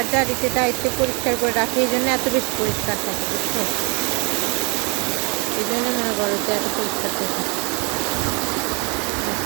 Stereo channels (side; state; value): left; quieter; 32.7 dB